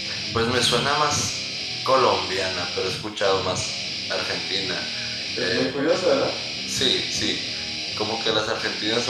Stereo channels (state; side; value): identical; both; correlation 1.00